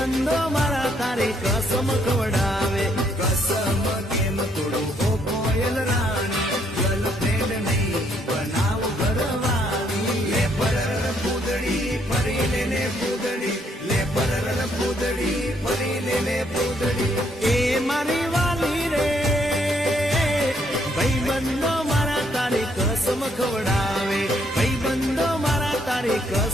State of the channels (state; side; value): normal; both; correlation 0.70